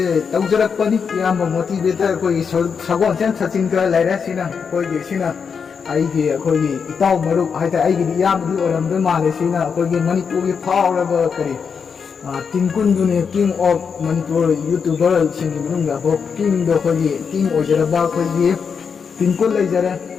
tawjarak pani yamba motivator ko sagon chen sachin ka laira sina ko ge sina ai ge ko ge itaw maru ai ta ai ge yam du oram da male sina ko ge manipur ge power ba kare tingkun du ne king of manipur youtuber sing gi ga bo king do ko ge king ojara ba ko ge tingkun lai jara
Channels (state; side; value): quieter; right; 6.2 dB